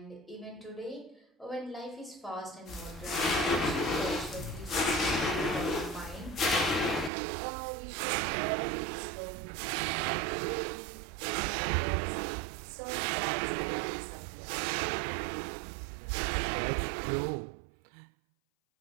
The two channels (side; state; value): left; drops out; at 7.1 s